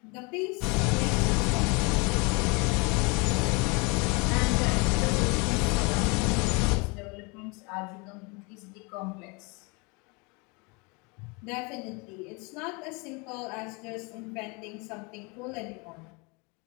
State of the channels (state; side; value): quieter; right; 29.6 dB